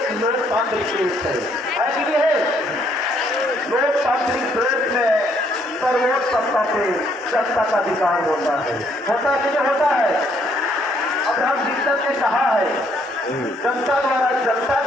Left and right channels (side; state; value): both; normal; correlation 0.68